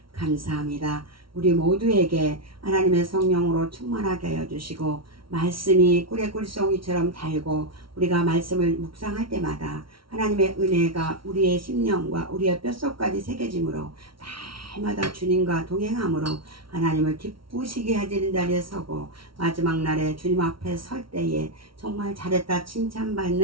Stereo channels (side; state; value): left; late; 0.74 ms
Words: 감사합니다. 우리 모두에게 하나님의 성령으로 충만하게 하여 주시고 말씀이 꿀의 꿀송이처럼 달고 우리가 말씀을 묵상할 때마다 하나님의 은혜가 우리의 심령과 우리의 뼛속까지 새겨짐으로 날마다 주님과 동행함으로 하나님을 기쁘시게 하시는 자리에 서고 마지막 날에 주님 앞에 설 때에 정말 잘했다